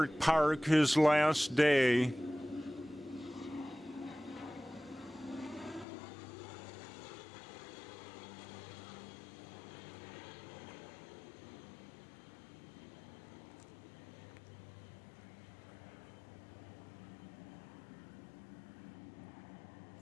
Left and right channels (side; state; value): right; drops out; at 5.9 s